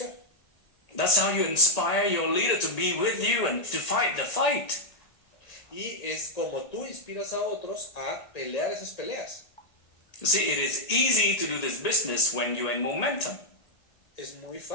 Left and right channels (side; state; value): right; late; 1.8 ms